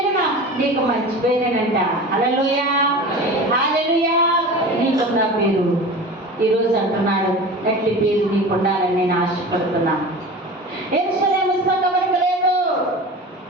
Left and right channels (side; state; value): both; normal; correlation 0.34